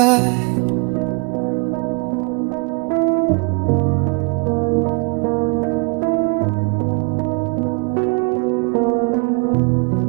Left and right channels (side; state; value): left; quieter; 32.4 dB